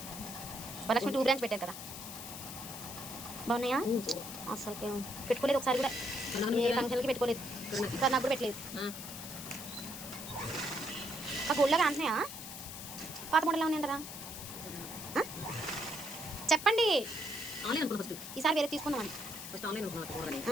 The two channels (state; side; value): noise; left; hiss, 9 dB below the sound